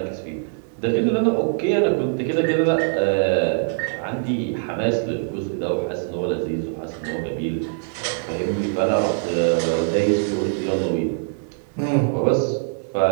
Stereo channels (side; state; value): left; silent; digital silence